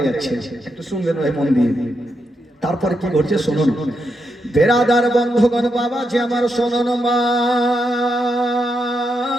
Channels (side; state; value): both; normal; correlation 0.83